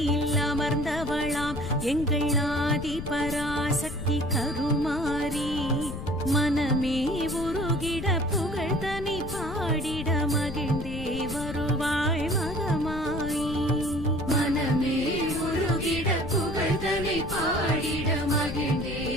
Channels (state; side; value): noise; left; rumble, 8 dB below the sound